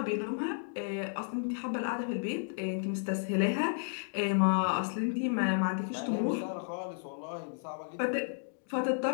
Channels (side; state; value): right; silent; digital silence